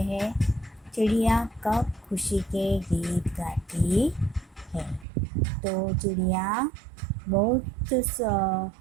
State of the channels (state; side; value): drops out; left; at 5.1 s